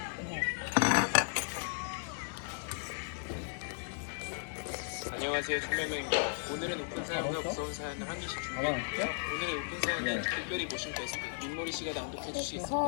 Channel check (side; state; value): right; silent; digital silence